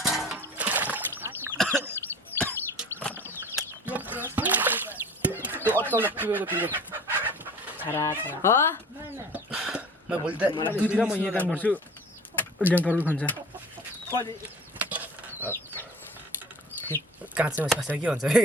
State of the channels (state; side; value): normal; both; correlation 0.42